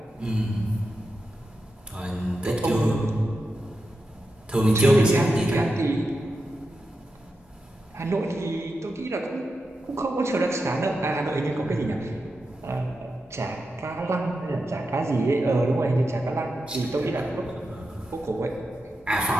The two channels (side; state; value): both; normal; correlation 0.89